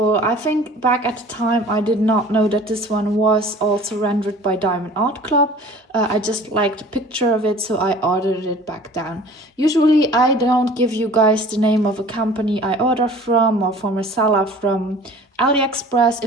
I think back at the time I did not know that this one was also rendered by Diamond Art Club. I just liked the picture of it, so I ordered it back then. Usually I don't give you guys the name of a company I order from or from a seller from Aliexpress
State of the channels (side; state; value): both; normal; correlation 0.46